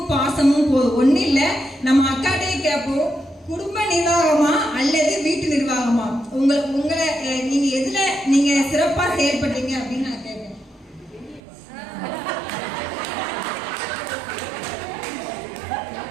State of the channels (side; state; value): left; drops out; at 11.4 s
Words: பாசமும் போதும். ஒண்ணு இல்ல, நம்ம அக்காட்டையே கேட்போம், குடும்ப நிர்வாகமா அல்லது வீட்டு நிர்வாகமா, உங்களை நீங்க எதுல நீங்க சிறப்பா செயல்படுறீங்க அப்படின்னு நான் கேட்பேன்.